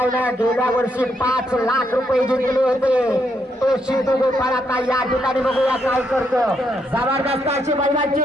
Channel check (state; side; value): normal; both; correlation 0.77